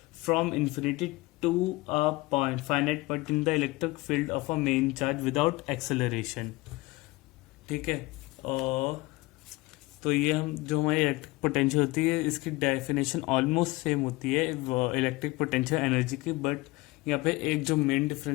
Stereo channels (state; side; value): quieter; right; 21.9 dB